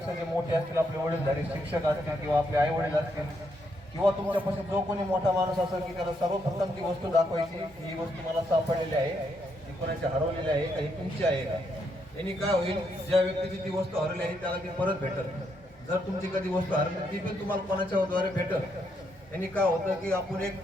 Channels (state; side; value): normal; both; correlation 0.77